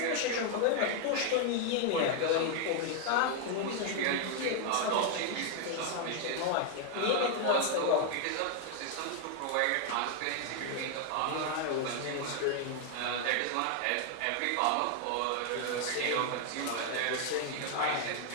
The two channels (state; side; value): different; both; correlation 0.00